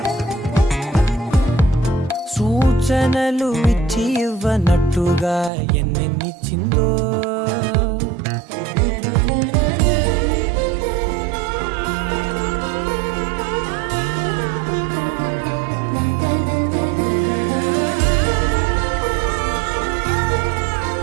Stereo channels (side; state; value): left; drops out; at 5.5 s